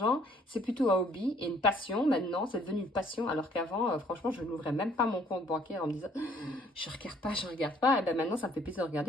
C'est plutôt un hobby et une passion. Maintenant, c'est devenu une passion. Alors qu'avant, franchement, je n'ouvrais même pas mon compte bancaire en me disant « je regarde pas ». Et bien maintenant, ça me fait plaisir de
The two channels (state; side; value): normal; both; correlation 0.61